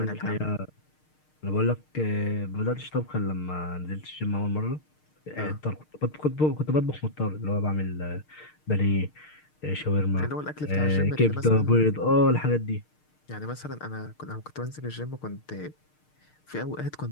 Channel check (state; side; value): late; right; 6.5 ms